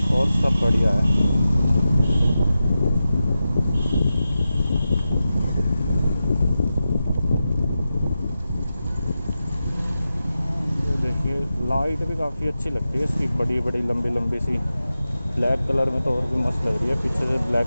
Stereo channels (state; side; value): inverted; both; correlation -0.91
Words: और सब बढ़िया है। ये देखिए लाइट भी काफ़ी अच्छी लगती है इसकी, बड़ी बड़ी लंबी लंबी सी। ब्लैक कलर में तो और भी मस्त लग रही है, पीछे से